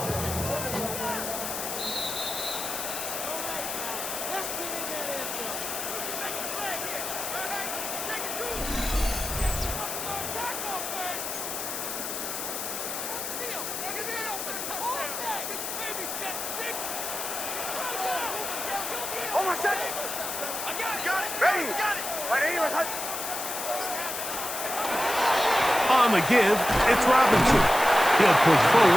Hold on a second. Ready? Ready? Where's Hunt? On the give, it's Robinson. He'll push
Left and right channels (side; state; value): left; noise; hiss, 5 dB below the sound